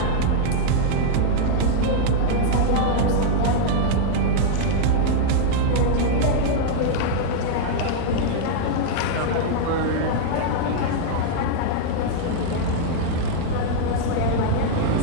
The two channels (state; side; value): different; both; correlation -0.01